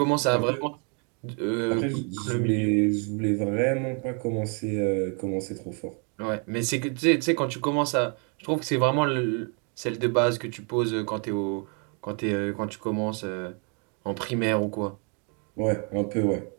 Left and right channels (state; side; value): quieter; left; 37.9 dB